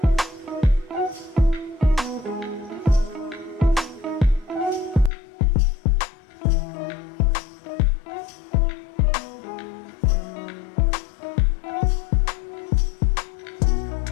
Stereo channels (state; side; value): drops out; right; at 5.1 s